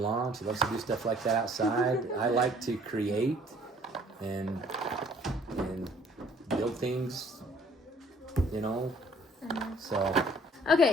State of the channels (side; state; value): both; normal; correlation 0.58